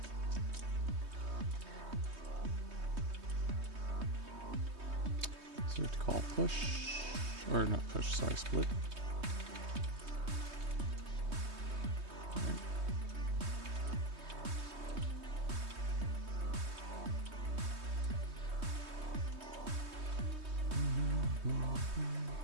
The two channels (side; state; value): left; late; 3.2 ms